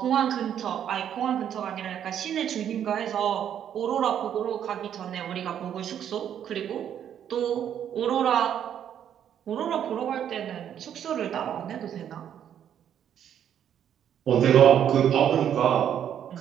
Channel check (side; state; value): left; quieter; 9.5 dB